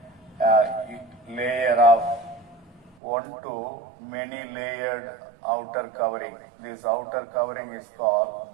a layer of 1 to many layered outer covering. This outer covering is called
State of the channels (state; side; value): drops out; left; at 3.0 s